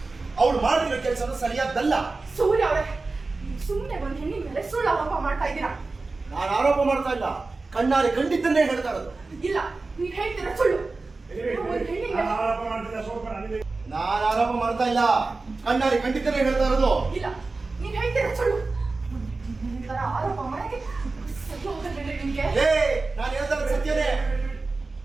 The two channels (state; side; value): quieter; left; 3.7 dB